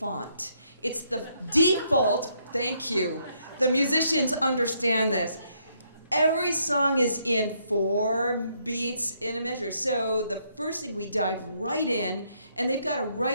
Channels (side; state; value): both; inverted; correlation -0.73